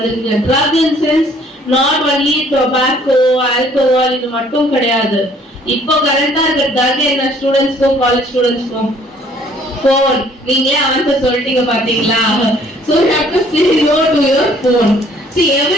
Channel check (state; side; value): normal; both; correlation 0.59